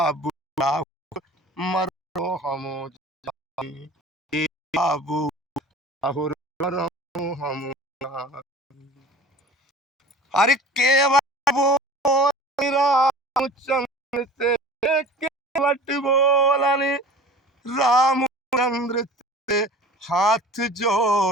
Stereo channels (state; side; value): normal; both; correlation 0.41